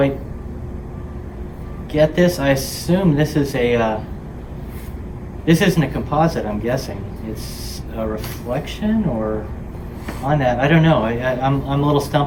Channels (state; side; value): identical; both; correlation 1.00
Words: get this. I assume this is this isn't a composite, I'm guessing. It's a reflection or on that. I don't know. I'm a little